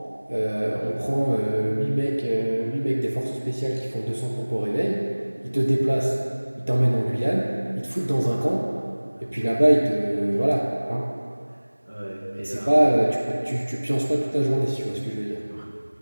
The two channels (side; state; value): both; inverted; correlation -1.00